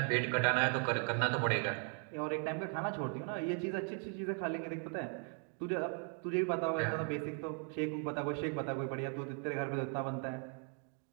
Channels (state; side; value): quieter; left; 39.0 dB